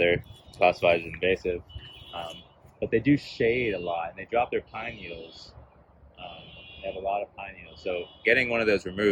classified as invasive. But they do shade a lot, and they drop their pine needles. They have a lot of pine needles. So getting one of those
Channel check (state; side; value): identical; both; correlation 1.00